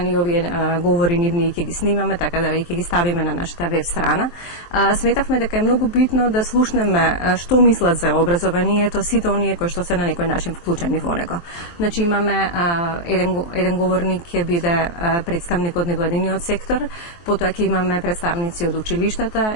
овие говори нивни ќе ги снимаме, така да ќе ги ставиме на нашата веб страна. Сметавме дека е многу битно да слушнеме што мислат за образованието сите оние кои што се на некој начин вклучени во него. Значи имаме еден говорник ќе биде представник од невладиниот сектор, потоа ќе имаме представници од училиштата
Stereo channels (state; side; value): late; right; 23 ms